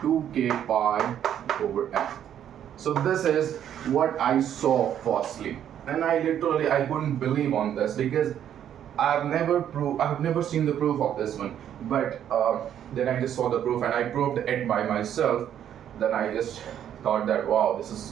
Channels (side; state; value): left; quieter; 10.0 dB